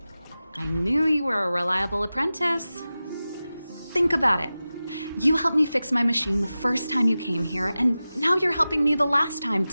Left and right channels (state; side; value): inverted; both; correlation -0.95